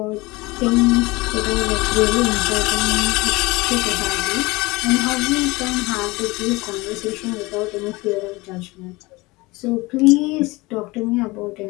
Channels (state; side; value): quieter; right; 22.7 dB